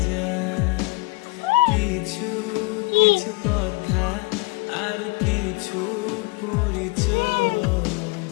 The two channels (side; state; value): right; quieter; 25.0 dB